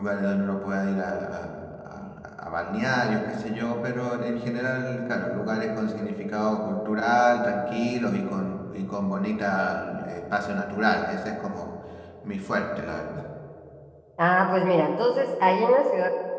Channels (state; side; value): identical; both; correlation 1.00